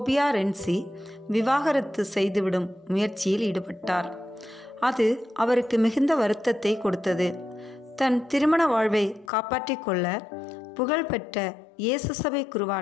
ரென்சி விவாகரத்து செய்துவிடும் முயற்சியில் ஈடுபட்டார். அது அவருக்கு மிகுந்த வருத்தத்தை கொடுத்தது. தன் திருமண வாழ்வை காப்பாற்றிக் கொள்ள புகழ்பெற்ற இயேசு சபை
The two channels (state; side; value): drops out; right; at 9.3 s